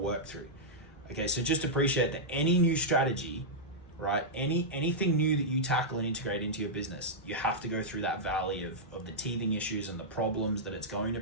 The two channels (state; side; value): normal; both; correlation -0.10